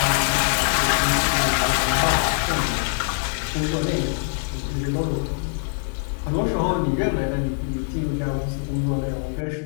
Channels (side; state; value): right; silent; digital silence